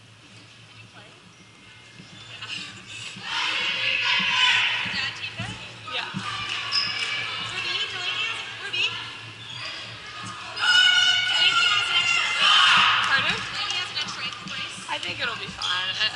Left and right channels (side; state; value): both; identical; correlation 1.00